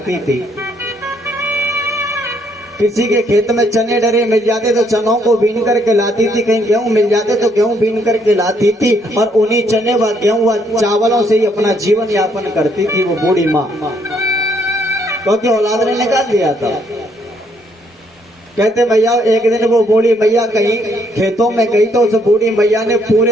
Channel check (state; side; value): normal; both; correlation 0.70